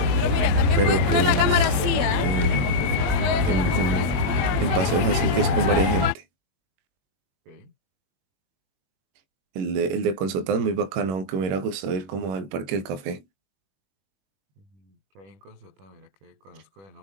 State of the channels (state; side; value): late; left; 21 ms